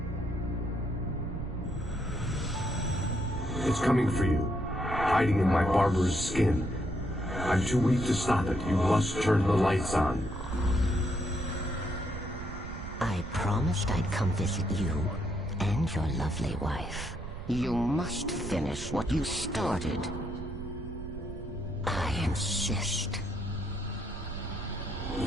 coming for you, hiding in my barber's skin. I'm too weak to stop it. You must turn the lights on. I promised I'd come visit you and your lovely wife. You must finish what you started. I insist.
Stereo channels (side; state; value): right; noise; rumble, 9 dB below the sound